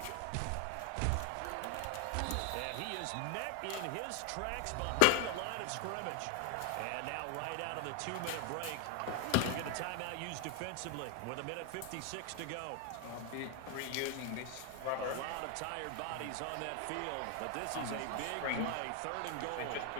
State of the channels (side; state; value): both; different; correlation 0.01